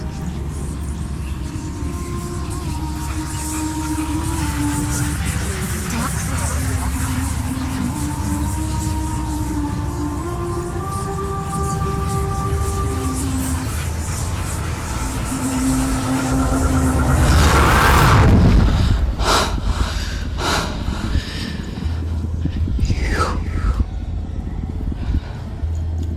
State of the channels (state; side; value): identical; both; correlation 1.00